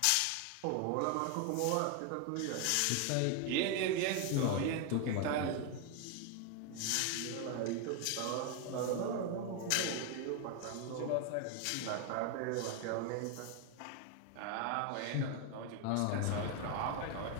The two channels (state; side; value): different; both; correlation 0.01